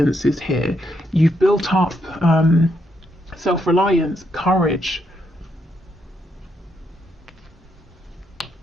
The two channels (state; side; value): normal; both; correlation 0.78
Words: here. You've built up self-reliance, courage.